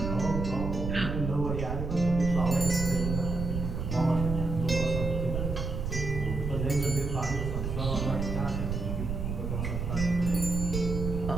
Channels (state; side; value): noise; right; rumble, 3 dB below the sound